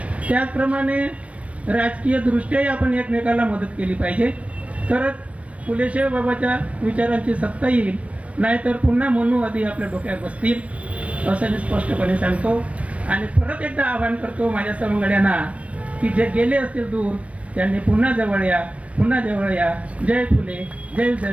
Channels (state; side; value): late; left; 0.064 ms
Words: त्याचप्रमाणे राजकीय दृष्ट्याही आपण एकमेकाला मदत केली पाहिजे, तरच फुले साहेबाबाच्या विचारांची सत्ता येईल. नाहीतर पुन्हा मनुवादी आपल्या डोक्यात बसतील असं मी स्पष्टपणे सांगतो. आणि परत एकदा आवाहन करतो माझ्या सवंगड्यांना की जे गेले असतील दूर त्यांनी पुन्हा जवळ या, पुन्हा जवळ या. जय फुले, जय